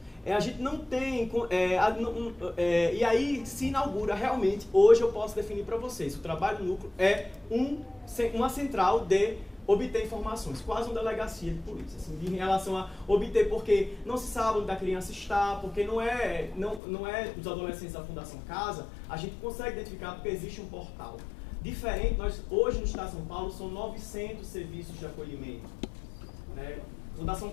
A gente não tem... e aí se inaugura realmente, hoje eu posso definir para vocês, o trabalho núcleo é uma central de obter informações, quase uma delegacia de polícia, assim, em relação a obter, porque não se sabe onde a criança está, porque não é os adolescentes da Fundação Casa, a gente consegue identificar porque existe um portal. Diferente, hoje no Estado de São Paulo são 900 serviços de acolhimento, né? Fundação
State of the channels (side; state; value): right; drops out; at 16.8 s